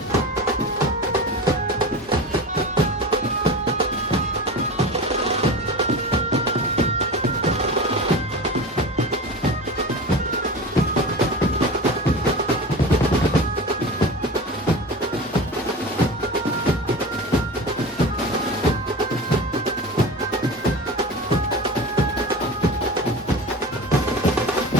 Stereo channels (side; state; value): both; normal; correlation 0.32